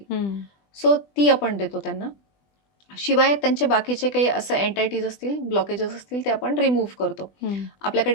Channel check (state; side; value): late; right; 20 ms